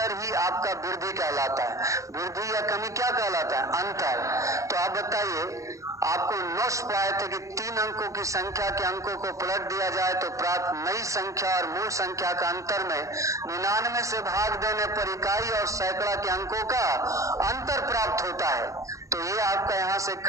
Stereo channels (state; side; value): late; left; 0.15 ms